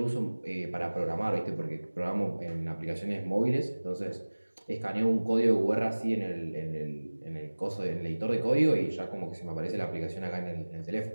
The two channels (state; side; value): inverted; both; correlation -1.00